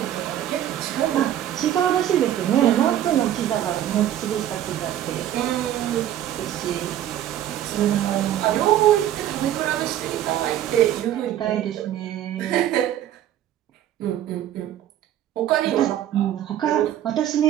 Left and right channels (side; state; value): left; quieter; 11.7 dB